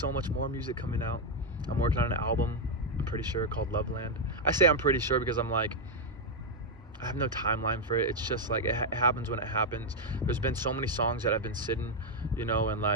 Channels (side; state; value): both; normal; correlation 0.01